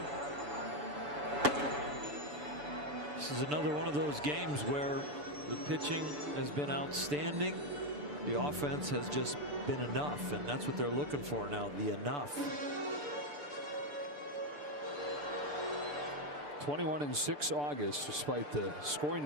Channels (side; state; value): left; late; 6.8 ms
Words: This is another one of those games where the pitching has been outstanding. The offense has just been enough, and that's what they're looking for now, the enough. 21-6 August, despite the scoring